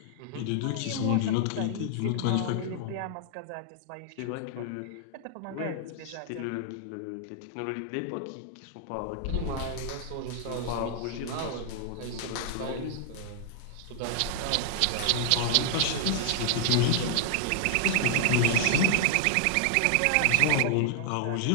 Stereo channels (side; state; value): both; different; correlation -0.01